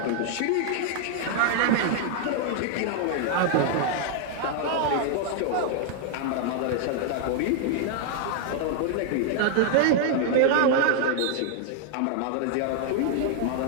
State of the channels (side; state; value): both; different; correlation 0.00